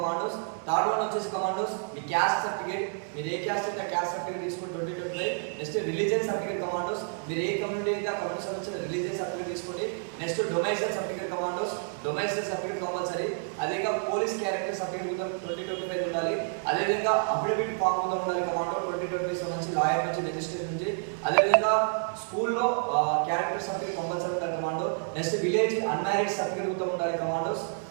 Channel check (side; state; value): left; silent; 58 dB below the other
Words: Third one వచ్చేసి కమాండోస్ మీ క్యాస్ట్ సర్టిఫికేట్, మీరు ఏ క్యాస్ట్ అయితే క్యాస్ట్ సర్టిఫికేట్ తీసుకొని 2025. నెక్స్ట్ రిలీజియన్ సర్టిఫికేట్ కమాండోస్, మీరు ఏ community అయితే ఆ కమ్యూనిటీ సంబంధించిన రిలీజియన్ సర్టిఫికేట్ తీసుకోండి. నెక్స్ట్ డొమైసైల్ సర్టిఫికేట్ కమాండోస్, డొమైసైల్ సర్టిఫికేట్ కంపల్సరీ. అదేవిధంగా పోలీస్ క్యారెక్టర్ సర్టిఫికేట్ కూడా 2025 ఉండాలి. అదేవిధంగా అఫిడవిట్ ఫామ్ కూడా ఉండాలి కమాండో 2025 సంబంధించి లాయర్ నుంచి, రిజిస్ట్రేషన్ నుంచి. అదేవిధంగా స్కూల్లో క్యారెక్టర్ సర్టిఫికేట్ కంపల్సరీ ఉండాలి commando. Next village unmarried certificate కూడా ఉండాలి కమాండోస్.